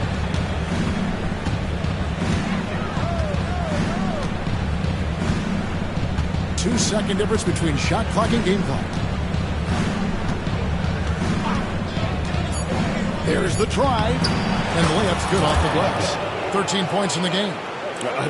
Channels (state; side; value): identical; both; correlation 1.00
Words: Two-second difference between shot clock and game clock. There's the try, and the layup's good off the glass. 13 points in the game.